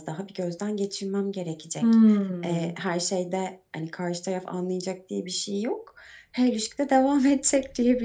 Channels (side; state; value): both; identical; correlation 1.00